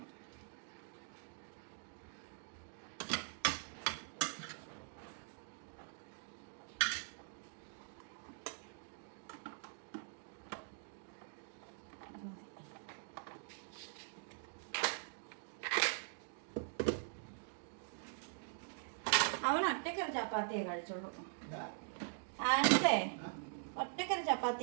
അവൻ ഒറ്റക്കൊരു ചപ്പാത്തിയെ കഴിച്ചോളൂ. ആൻസേ ഒറ്റക്കൊരു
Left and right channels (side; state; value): left; silent; digital silence